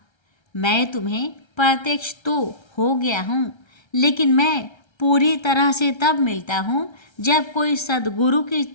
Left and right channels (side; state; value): right; late; 1.3 ms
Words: मैं तुम्हें प्रत्यक्ष तो हो गया हूँ, लेकिन मैं पूरी तरह से तब मिलता हूँ जब कोई सद्गुरु की